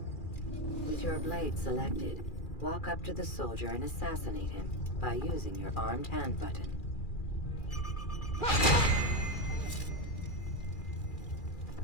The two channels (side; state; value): right; late; 2.4 ms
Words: With your blade selected, walk up to the soldier and assassinate him by using your armed hand button.